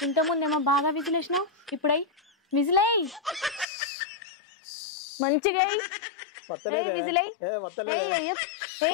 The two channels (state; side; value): drops out; right; at 3.7 s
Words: ఇంతకుముందేమో బాగా విజిల్ వేసినావు, ఇప్పుడై విజిల్ అయ్యి మంచిగా విజిల్ అయ్యి.